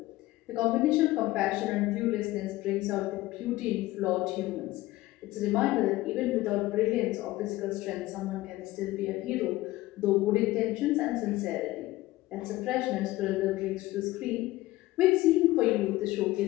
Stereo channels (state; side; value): quieter; right; 17.8 dB